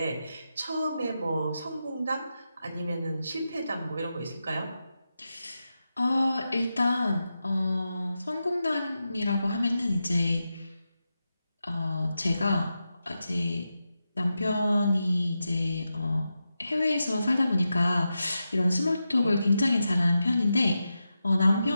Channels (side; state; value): both; inverted; correlation -0.90